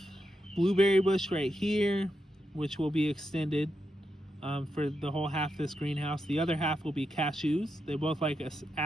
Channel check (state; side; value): normal; both; correlation 0.85